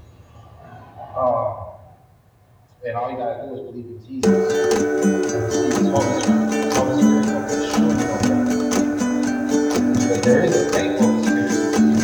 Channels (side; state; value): both; identical; correlation 1.00